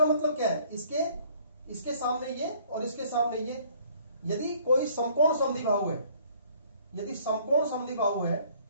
मतलब क्या है? इसके सामने ये और इसके सामने ये, यदि कोई समकोण समद्विबाहु है, यदि समकोण समद्विबाहु है,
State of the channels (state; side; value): inverted; both; correlation -0.59